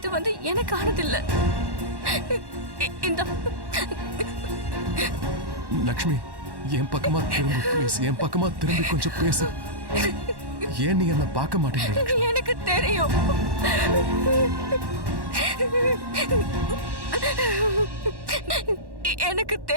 வந்து எனக்கானது இல்ல. இந்த லக்ஷ்மி என் பக்கமா திரும்ப ப்ளீஸ், என் பக்கமா திரும்பி கொஞ்சம் பேசு. ஏன் நீ என்ன பார்க்க மாட்டேங்கிற? எனக்கு தெரியும். எனக்கு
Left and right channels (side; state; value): left; late; 1.1 ms